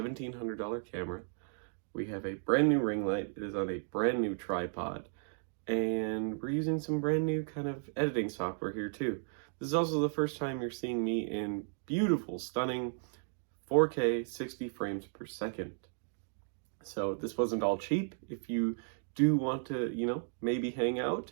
camera. We have a brand new ring light. It is on a brand new tripod. And we're using some brand new kind of editing software here too. This is also the first time you're seeing me in beautiful, stunning 4K 60 frames per second. So this wasn't all cheap. If you do want to, maybe hang out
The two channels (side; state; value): left; silent; digital silence